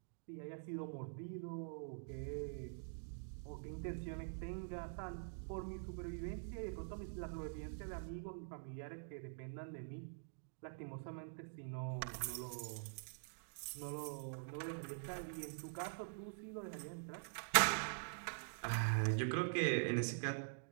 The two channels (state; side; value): silent; left; digital silence